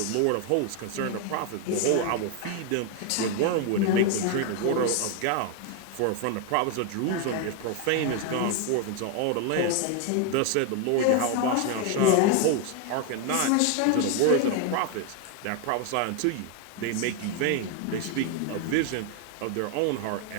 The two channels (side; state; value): both; different; correlation 0.01